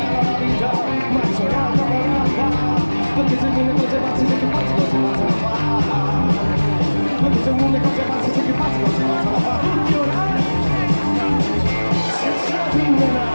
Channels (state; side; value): inverted; both; correlation -1.00